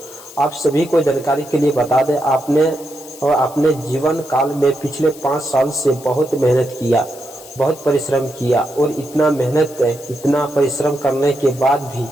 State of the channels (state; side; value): noise; left; hiss, 19 dB below the sound